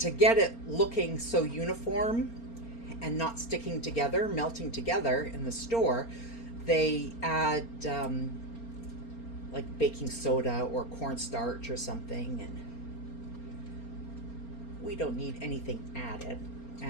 get it looking so uniform and not sticking together, melting together in the store, they add like baking soda or cornstarch or something, and we don't need anything added.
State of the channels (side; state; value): right; late; 4.3 ms